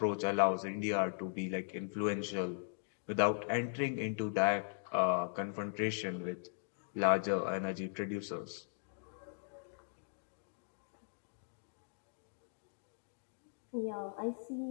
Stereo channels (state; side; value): silent; right; digital silence